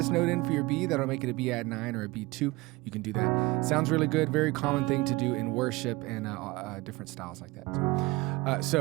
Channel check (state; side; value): quieter; left; 21.9 dB